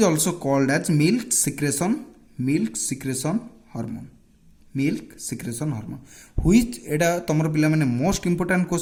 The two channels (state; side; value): identical; both; correlation 1.00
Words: also called as milk secretion hormone. Which, ଏଇଟା ତମର ପିଲାମାନେ most important